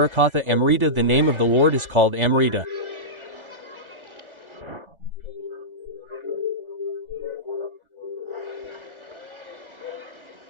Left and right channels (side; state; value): left; late; 1.3 ms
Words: Amrita. The name of the Lord is called Amrita.